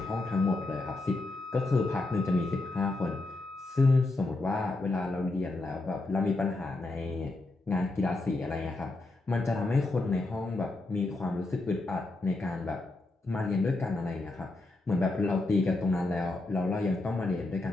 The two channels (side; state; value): right; quieter; 3.0 dB